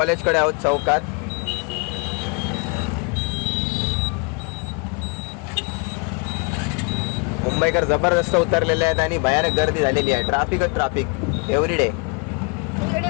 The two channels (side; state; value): right; quieter; 32.4 dB